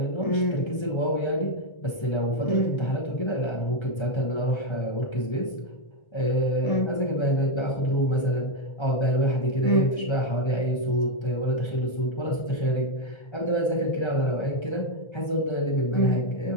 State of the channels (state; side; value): late; right; 1.3 ms